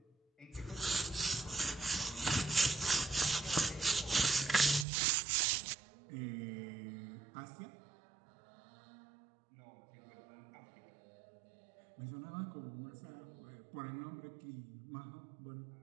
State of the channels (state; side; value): drops out; left; at 4.9 s